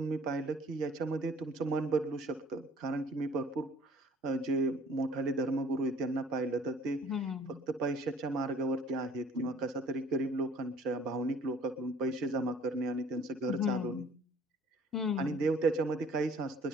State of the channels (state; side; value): normal; both; correlation 0.54